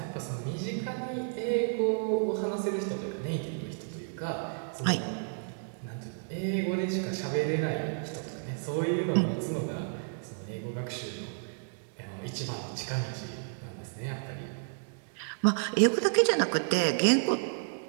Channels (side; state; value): left; silent; digital silence